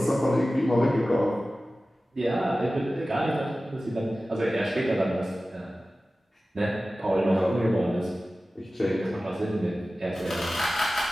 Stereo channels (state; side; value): normal; both; correlation 0.96